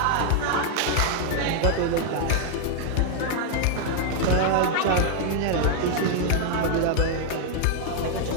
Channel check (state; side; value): different; both; correlation 0.00